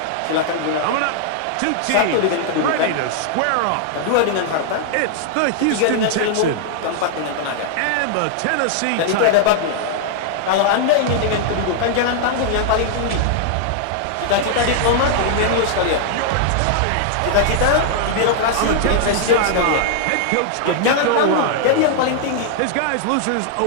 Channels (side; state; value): both; different; correlation -0.01